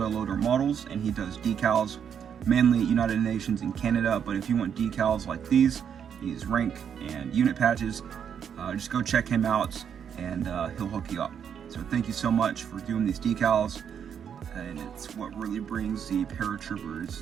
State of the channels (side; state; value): left; quieter; 8.0 dB